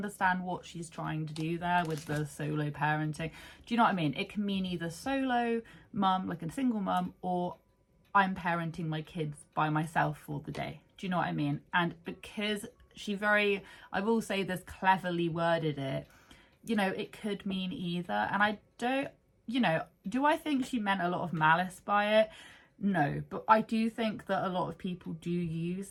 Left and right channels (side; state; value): both; identical; correlation 1.00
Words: what she's trying to do there with the solo parenting. Do you know what I mean? It can mean either solo mum, like a single mum, or I'm parenting my kids by myself for the day. Do you know what I mean? And because I will say this, cleverly worded it, you know, it could mean either. And I don't, you know, do I think she meant a lot of malice by it? No, but I do think that a lot of people do use